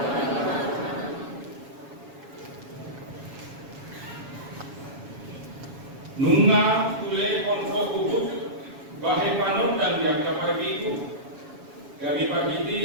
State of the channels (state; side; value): late; left; 7.2 ms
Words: nunga tule konfo kubuk bahe panodang yang kapargitu dari